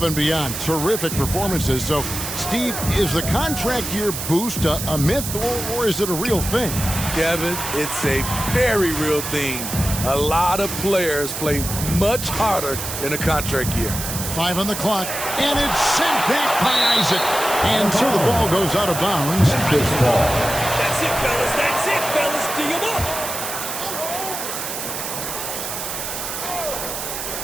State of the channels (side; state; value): right; noise; hiss, 5 dB below the sound